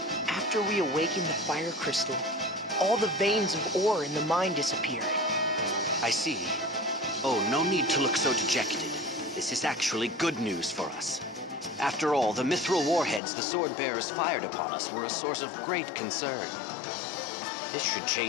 After we awakened the fire crystal, all the veins of ore in the mine disappeared. I see. Oh, no need to look so dejected. This is actually good news for us. After all, the mithril warheads the sword-bearers fired upon us were a source of great concern. This should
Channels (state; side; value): drops out; right; at 13.2 s